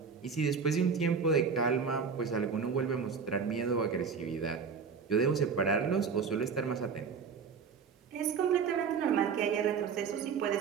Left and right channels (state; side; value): quieter; left; 5.9 dB